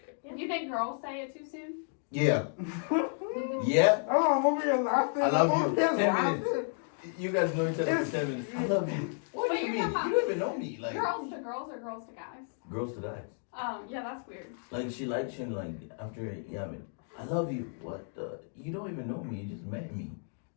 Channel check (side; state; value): right; silent; 56 dB below the other